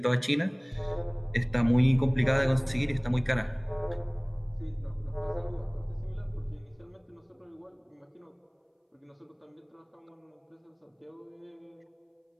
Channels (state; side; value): identical; both; correlation 1.00